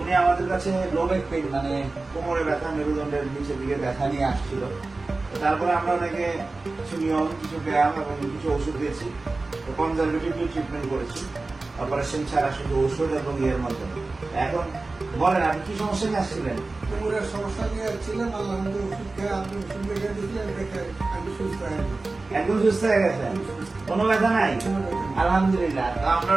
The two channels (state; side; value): quieter; left; 3.4 dB